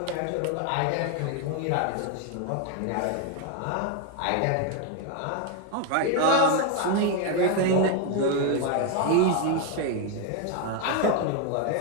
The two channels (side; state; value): both; different; correlation 0.01